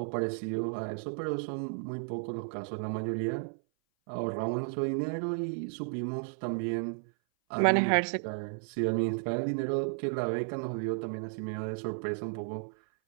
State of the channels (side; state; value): left; silent; 56 dB below the other